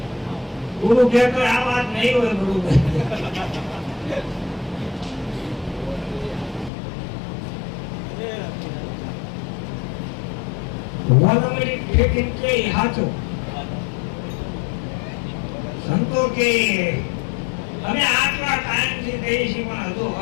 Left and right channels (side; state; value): right; drops out; at 6.7 s